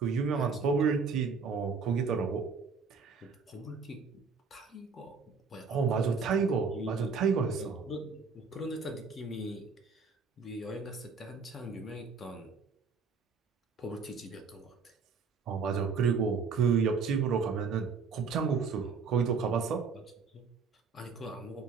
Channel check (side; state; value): left; quieter; 5.1 dB